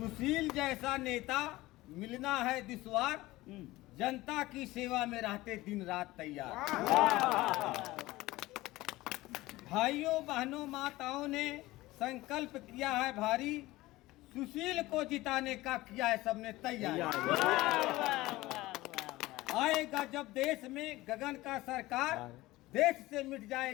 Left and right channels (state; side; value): quieter; right; 18.6 dB